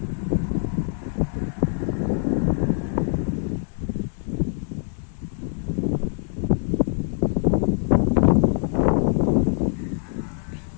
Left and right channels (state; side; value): silent; right; 61 dB below the other